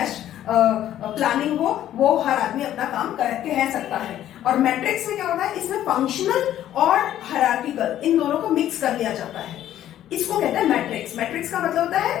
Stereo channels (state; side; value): quieter; right; 12.0 dB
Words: प्लानिंग हो, वो हर आदमी अपना काम कह सकता है। और मैट्रिक्स में क्या होता है, इसमें फंक्शनल और हायरार्किकल इन दोनों को मिक्स कर लिया जाता है, इसको कहते हैं मैट्रिक्स। मैट्रिक्स का मतलब होता